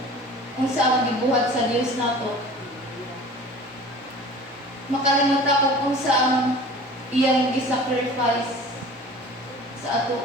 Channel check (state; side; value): normal; both; correlation 0.42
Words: gibuhat sa Dios nato. Makalimutan kung unsa ang iyang gi-sacrifice sa ato.